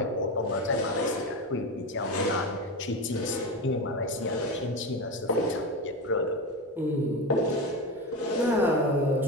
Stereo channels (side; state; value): both; normal; correlation 0.20